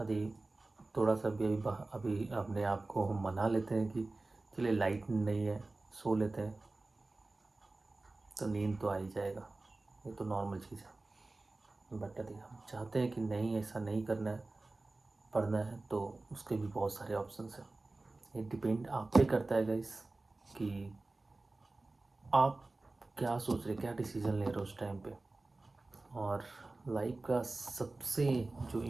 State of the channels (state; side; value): quieter; left; 3.2 dB